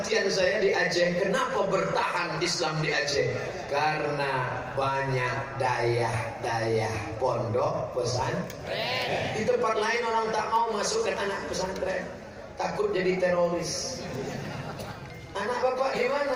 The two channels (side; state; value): both; identical; correlation 1.00